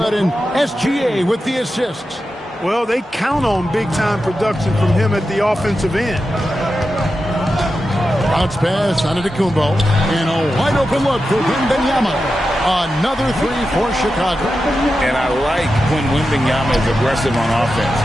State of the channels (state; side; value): normal; both; correlation 0.90